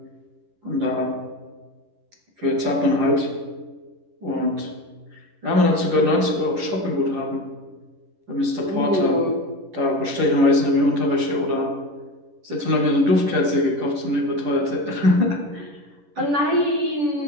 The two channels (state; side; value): late; left; 11 ms